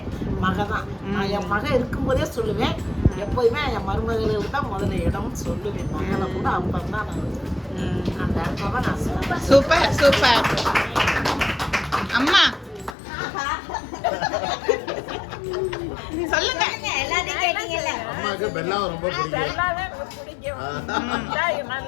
மகன் தான். நான் என் மகன் இருக்கும்போதே சொல்லுவேன், எப்போதுமே என் மருமகளுக்கு தான் முதல்ல இடம்னு சொல்லுவேன். மகளை கூட அப்போ தான் நான் அந்த இடத்துல தான் நான் சொல்லுவேன். Super super. அம்மா சொல்லுங்க. எல்லாத்தையும் கேட்டீங்கல்ல. அம்மாவுக்கு பெல்லாவை ரொம்ப பிடிக்கும். எல்லாமே பிடிக்கும்.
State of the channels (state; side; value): drops out; right; at 13.0 s